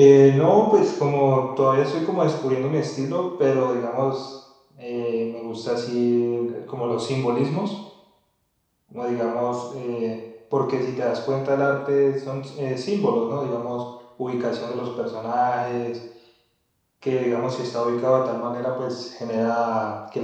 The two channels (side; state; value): both; identical; correlation 1.00